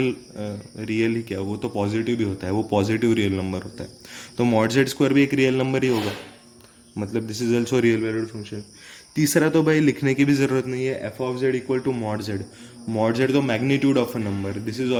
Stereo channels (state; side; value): identical; both; correlation 1.00